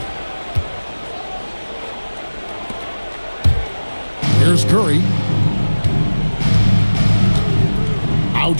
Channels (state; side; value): inverted; both; correlation -1.00